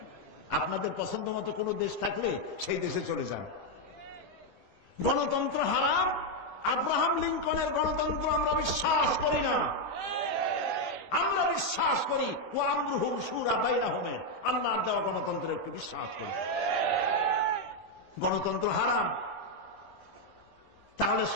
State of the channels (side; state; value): right; late; 10 ms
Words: আপনাদের পছন্দ মতো কোনো দেশ থাকলে সেই দেশে চলে যান। গণতন্ত্র হারাম, আব্রাহাম লিঙ্কনের গণতন্ত্র আমরা বিশ্বাস করি না। আমরা বিশ্বাস করি ও আমরুহুম শুরা বাইনাহুমের, আল্লাহর দেওয়া গণতন্ত্রের একটু বিশ্বাস করি। গণতন্ত্র হারাম, তাহলে